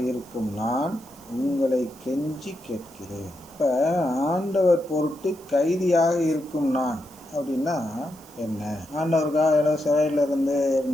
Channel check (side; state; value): right; noise; hiss, 23 dB below the sound